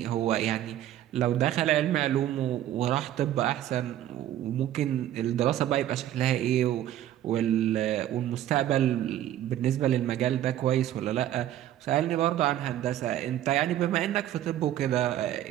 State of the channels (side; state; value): left; quieter; 12.3 dB